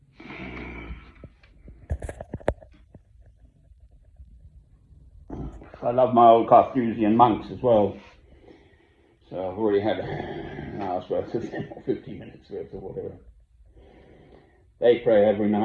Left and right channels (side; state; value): both; identical; correlation 1.00